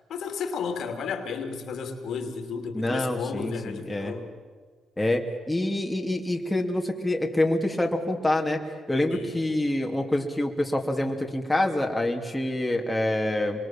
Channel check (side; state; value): both; normal; correlation 0.92